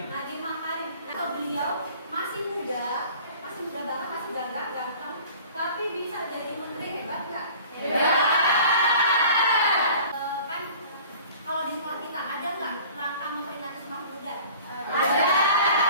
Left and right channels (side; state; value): both; inverted; correlation -0.46